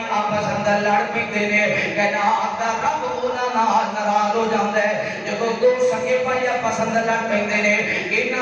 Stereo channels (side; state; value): both; identical; correlation 1.00